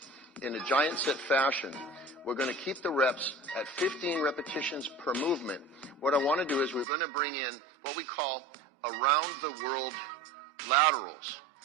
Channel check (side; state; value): left; drops out; at 6.9 s